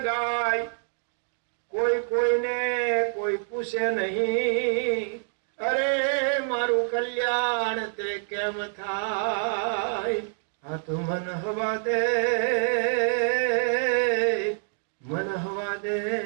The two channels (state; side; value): silent; left; digital silence